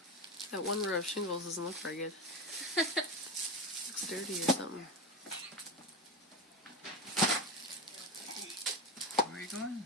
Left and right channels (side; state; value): both; normal; correlation 0.18